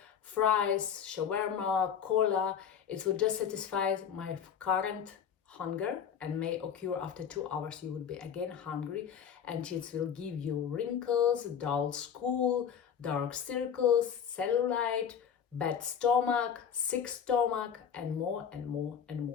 fries, shawarma, cola. It would just satisfy my current hunger, and may occur after 2 hours. You would be again hungry, and it will give you wrinkles, dull skull, dark circles, cellulite, bad stomach, sick stomach, and more and more and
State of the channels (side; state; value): right; quieter; 7.9 dB